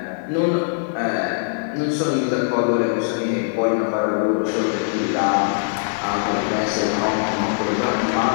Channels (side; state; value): right; silent; digital silence